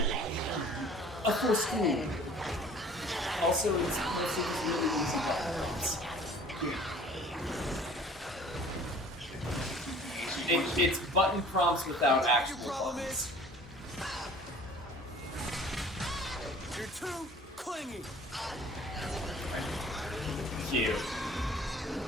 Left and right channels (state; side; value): normal; both; correlation 0.49